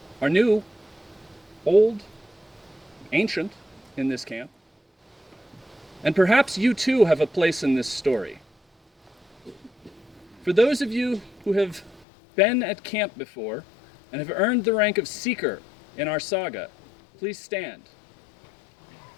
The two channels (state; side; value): drops out; right; at 12.1 s